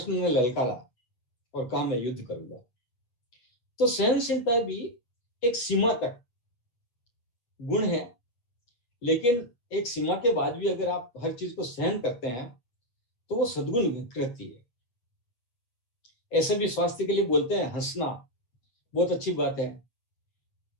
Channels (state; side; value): late; right; 8.3 ms